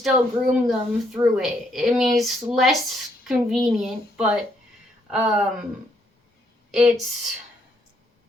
groom them through it. I mean, it's less convenient, but it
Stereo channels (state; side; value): normal; both; correlation 0.72